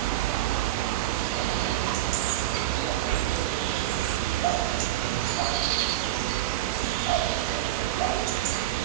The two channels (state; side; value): quieter; left; 14.7 dB